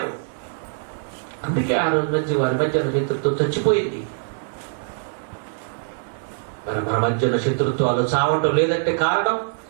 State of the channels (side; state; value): left; silent; digital silence